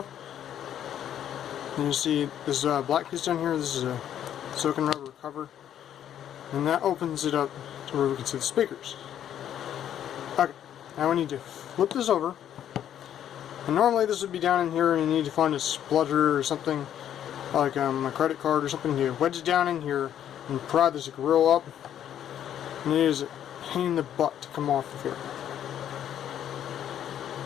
you see this black piece down here. This is a silicone rubber cover, and that opens it up to where we can see the speakers. Okay, now we need to flip this over, and normally this would be down in here, and you need to find a splutter or something like a credit card or something to wedge it down in here and pry this grill up, and it is a pain in the butt to come off of here.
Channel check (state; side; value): quieter; right; 10.3 dB